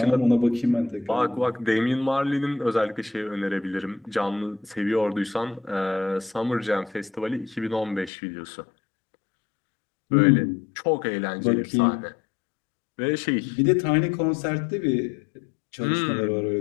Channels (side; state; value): right; drops out; at 8.1 s